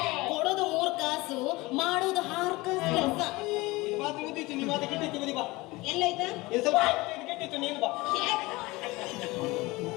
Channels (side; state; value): right; quieter; 21.8 dB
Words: ಕೊಡೋದು 3 ಕಾಸು ಮಾಡೋದು 6 ಕಾಸು ಕೆಲಸ. ಮಾತು ಮುಗಿತು, ನಿಮ್ಮ ಮಾತು ಕೆಟ್ಟಿತ್ತು, ಬದಿ ಬಾ. ಎಲ್ಲೈತಾ ಇದು ಸ್ವಲ್ಪ ಇದು ಕೆಟ್ಟಿತ್ತು, ನೀನು ಬಾ.